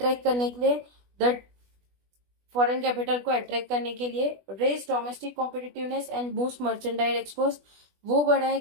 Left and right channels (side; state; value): left; late; 20 ms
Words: करने के लिए, द फॉरेन कैपिटल को अट्रैक्ट करने के लिए। Raise domestic competitiveness and boost merchandise export, वो